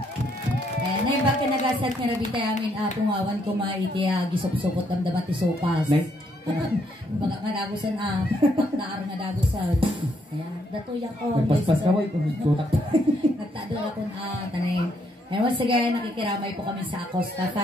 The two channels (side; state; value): both; normal; correlation 0.73